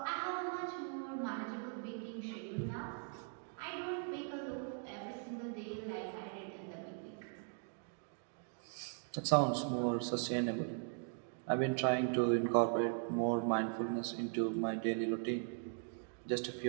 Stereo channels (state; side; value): silent; left; 51 dB below the other